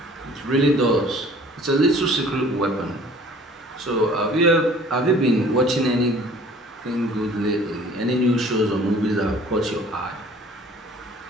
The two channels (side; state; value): both; normal; correlation 0.50